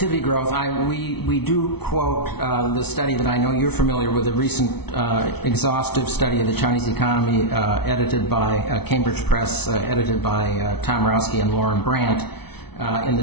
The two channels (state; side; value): late; right; 0.98 ms